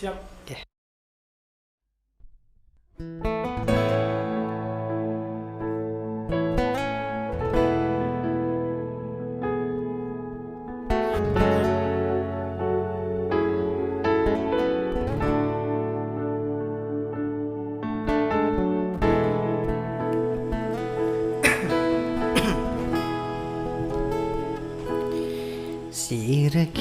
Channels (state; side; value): identical; both; correlation 1.00